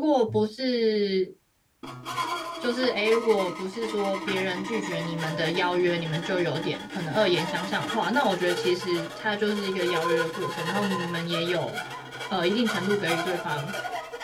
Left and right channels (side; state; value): both; identical; correlation 1.00